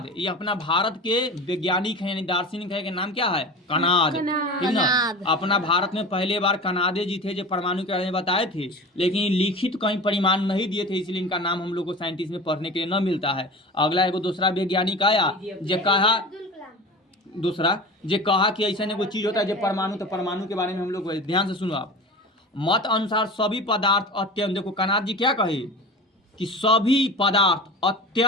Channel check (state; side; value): normal; both; correlation 0.33